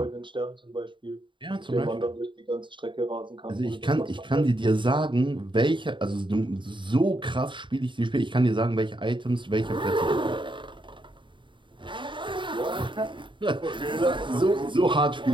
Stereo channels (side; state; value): left; late; 0.23 ms